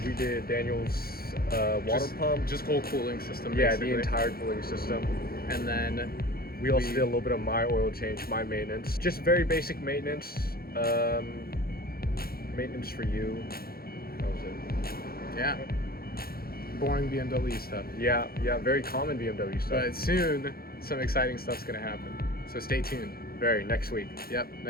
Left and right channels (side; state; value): right; late; 0.44 ms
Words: we did Daniel's water pump, Just whole cooling system. yeah, basically. the entire cooling system. And then We also did a little bit of my oil change, my maintenance. Just very basic maintenance. Maintenance for you. That was it. yeah, boring BMW stuff. Yeah, very common BMW stuff. But soon, some exciting stuff's gonna happen. So stay tuned. Very, next week. Yep,